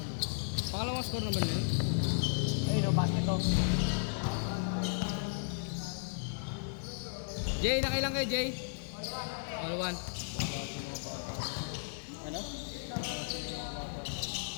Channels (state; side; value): silent; right; digital silence